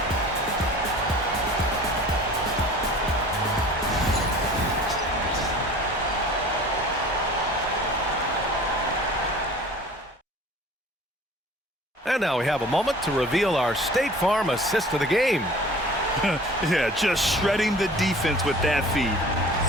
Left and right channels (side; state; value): both; normal; correlation 0.45